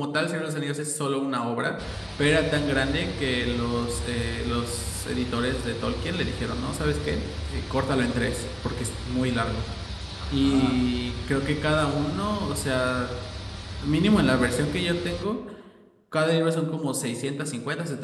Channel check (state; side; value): identical; both; correlation 1.00